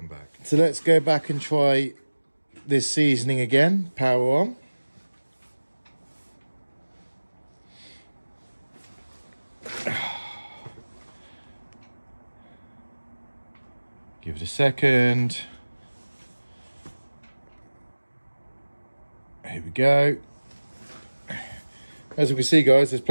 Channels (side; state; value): both; inverted; correlation -1.00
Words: back. So let's go back and try this seasoning again. Power on. Give it a second. Here we go. As you can see, guys, there's